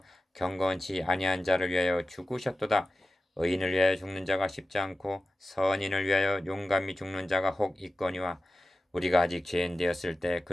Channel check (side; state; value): both; normal; correlation 0.94